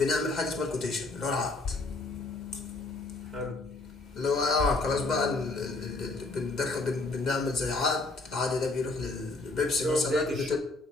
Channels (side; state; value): right; quieter; 3.3 dB